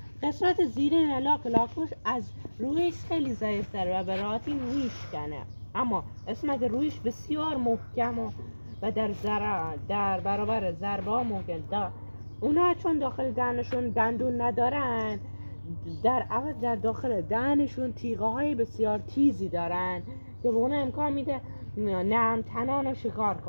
قسمت زیرین لاک‌پشت از رویش خیلی ضعیف‌تره و به راحتی رویش کنه، اما قسمت رویش بسیار محکم و در برابر ضربه ها ممکن دار. اونا چون داخل دهنشون دندون ندارن، در عوض در داخل دهنشون تیغه های بسیار تیزی دارن که به اونا امکان میده نرم تنان رو شکار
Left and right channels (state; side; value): inverted; both; correlation -1.00